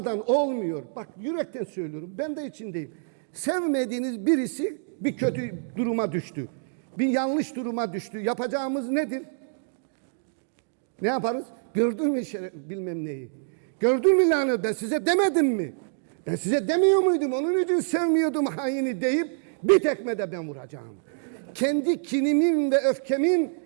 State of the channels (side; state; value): left; silent; digital silence